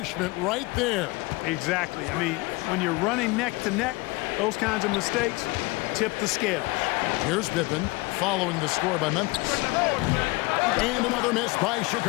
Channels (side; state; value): right; quieter; 23.6 dB